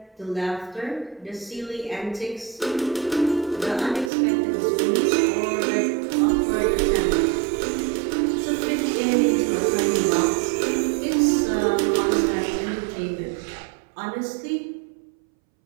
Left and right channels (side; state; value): left; drops out; at 4.1 s